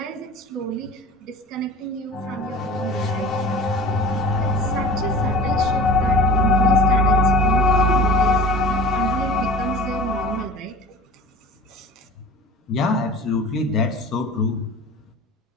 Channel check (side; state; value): both; normal; correlation 0.39